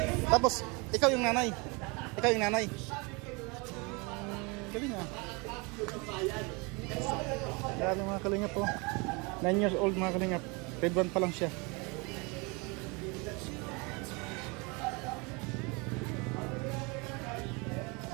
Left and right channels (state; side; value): quieter; left; 28.9 dB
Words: Tapos, ikaw yung nanay. Ikaw yung nanay. Galing nga. Grabe mga kalingap po. 9 years old mga kalingap. Grade 1 pa lang siya.